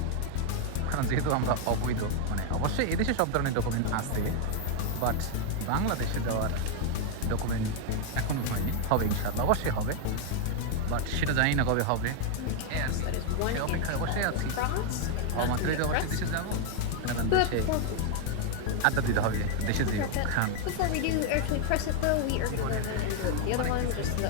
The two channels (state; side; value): different; both; correlation 0.00